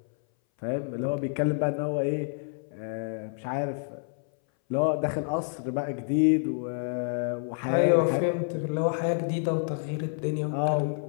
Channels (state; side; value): silent; right; 59 dB below the other